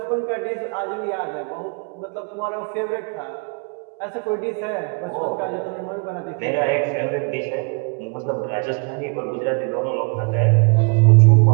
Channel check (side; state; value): left; quieter; 36.2 dB